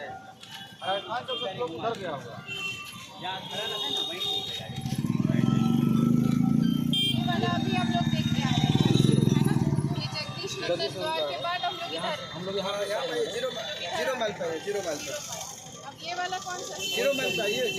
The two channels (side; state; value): both; identical; correlation 1.00